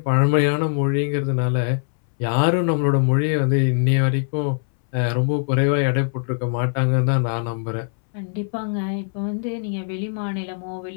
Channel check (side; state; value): right; silent; 62 dB below the other